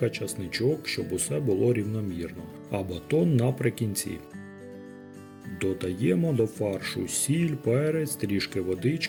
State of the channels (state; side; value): identical; both; correlation 1.00